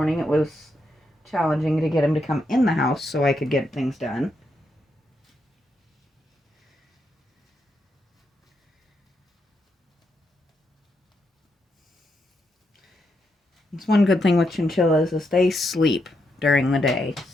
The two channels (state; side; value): normal; both; correlation 0.81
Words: it was challenging to get him to come in the house so I could get things done. It's one good thing with chinchillas is they sleep during the day,